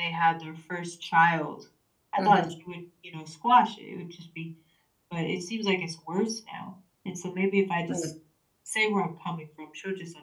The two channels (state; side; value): identical; both; correlation 1.00